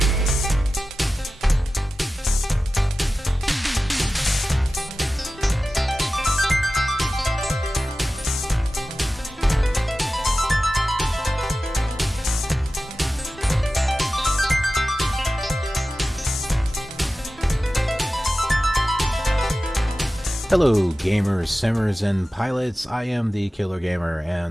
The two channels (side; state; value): both; normal; correlation 0.94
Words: Hello gamers, simmers, and pilots. I am the Killer Gamer,